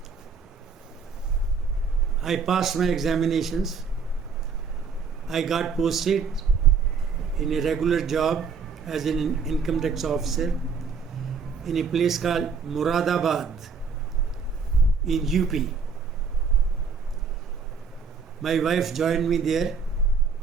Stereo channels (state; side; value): quieter; left; 5.4 dB